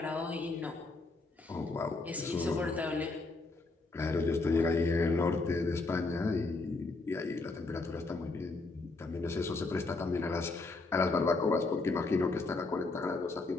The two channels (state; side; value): quieter; right; 3.4 dB